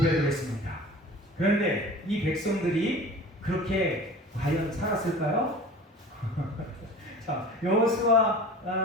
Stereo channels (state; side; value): normal; both; correlation 0.39